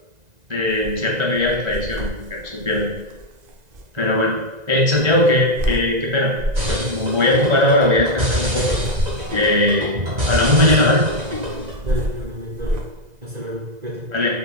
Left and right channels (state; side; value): late; left; 2.0 ms